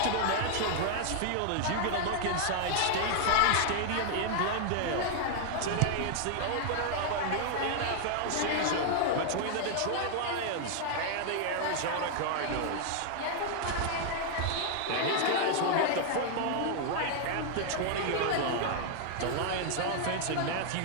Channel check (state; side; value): different; both; correlation 0.00